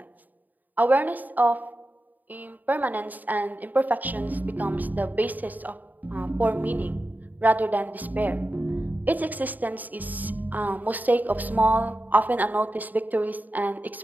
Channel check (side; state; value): left; late; 0.084 ms